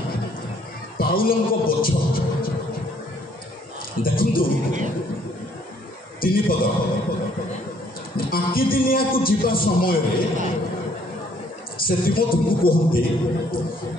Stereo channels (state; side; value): normal; both; correlation 0.64